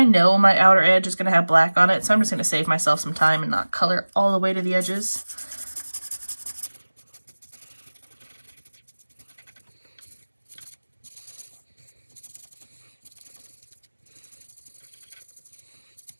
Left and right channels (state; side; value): inverted; both; correlation -1.00